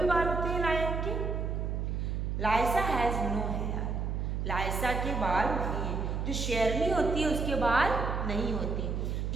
बाल होते हैं लायन के. Lysa has no hair. लाइसा के बाल नहीं हैं. जो शेरनी होती है उसके बाल नहीं होते.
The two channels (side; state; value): right; noise; hum, 1 dB below the sound